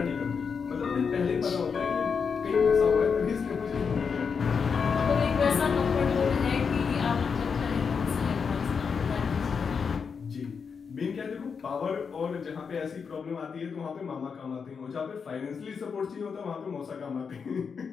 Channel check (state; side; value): quieter; right; 5.9 dB